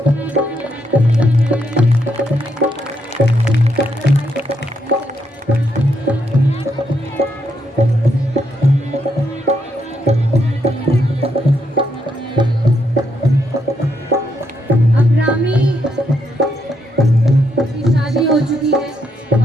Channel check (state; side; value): normal; both; correlation 0.77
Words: अब रामी की शादी हो चुकी है